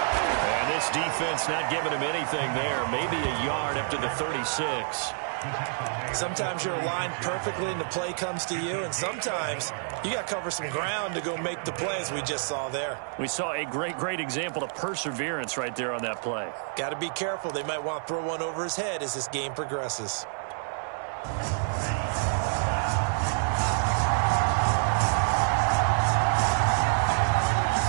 And this defense not giving him anything there. Maybe a yard up to the 36. Sometimes you're aligned perfectly and the play comes to you, and sometimes you got to cover some ground to go make the play, as we just saw there. We saw a great example of perseverance right there on that play. Got to be careful. They might want to throw one over his head as this game progresses.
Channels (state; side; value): silent; left; digital silence